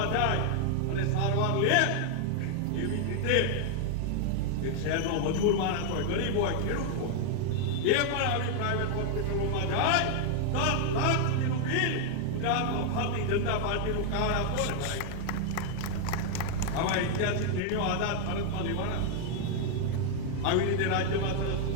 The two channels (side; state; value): both; different; correlation 0.00